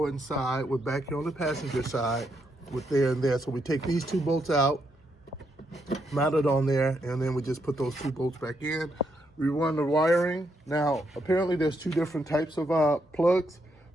with back here on the passenger side with there and there. So we take these two bolts out, mount it on there, and then we just put those two bolts back in. We run the wiring. Now, apparently there's two different types of plugs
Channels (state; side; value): normal; both; correlation 0.78